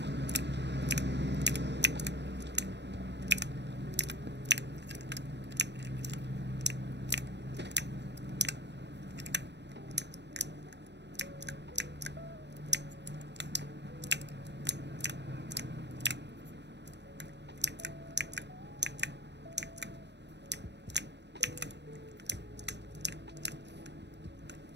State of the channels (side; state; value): left; late; 0.50 ms